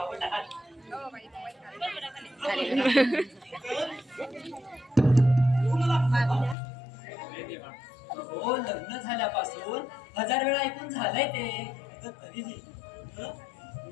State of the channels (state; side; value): drops out; right; at 6.6 s